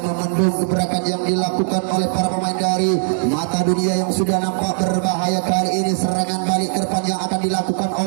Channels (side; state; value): left; silent; 66 dB below the other